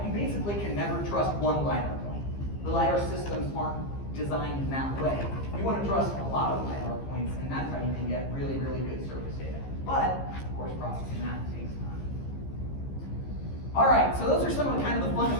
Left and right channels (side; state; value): right; late; 15 ms